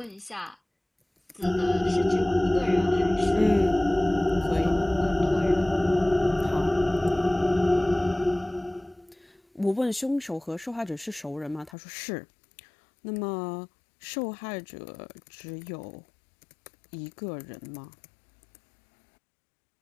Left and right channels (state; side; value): drops out; right; at 11.8 s